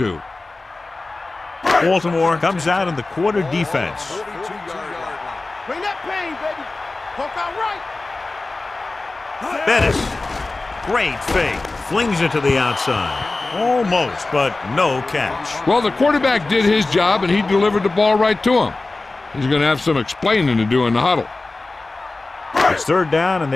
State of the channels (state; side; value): quieter; right; 3.3 dB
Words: Baltimore comes out in the quarter defense. Bring that pain, baby. Poke out right. Bettis, great fake, flings it to the outside. Almost, but no catch. Well, the quarterback did his job, and he delivered the ball right to him. He's going to have some explaining to do in the huddle. It's 3rd down, and